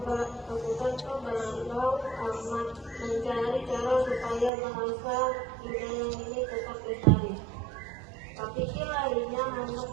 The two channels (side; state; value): left; drops out; at 4.5 s